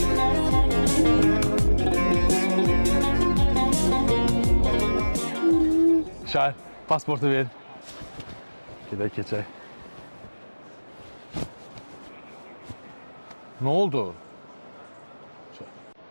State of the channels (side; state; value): both; inverted; correlation -1.00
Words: Şair, pasportu ver. Gedək keçək. Ne oldu?